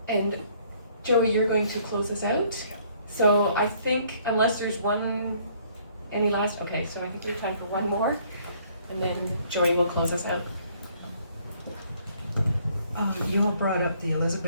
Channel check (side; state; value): both; inverted; correlation -0.63